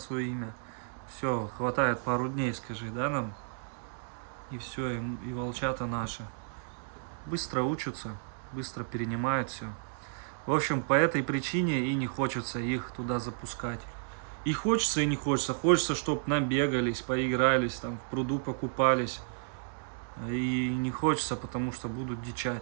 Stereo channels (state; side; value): silent; left; digital silence